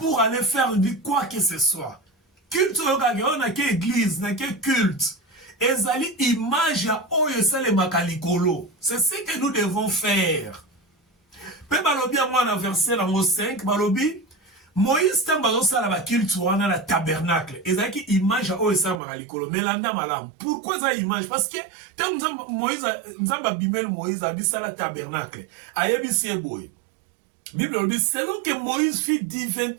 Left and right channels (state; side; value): drops out; left; at 19.0 s